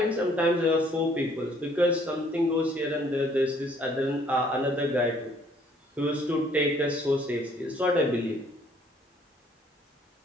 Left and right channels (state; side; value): normal; both; correlation 0.61